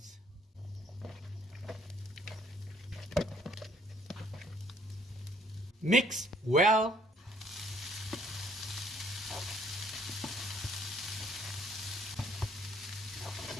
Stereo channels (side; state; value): both; normal; correlation 0.63